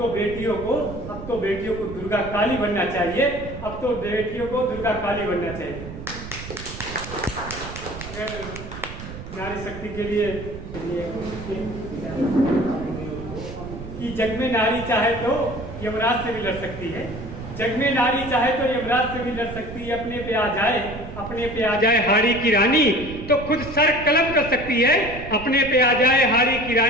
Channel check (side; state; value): right; noise; rumble, 11 dB below the sound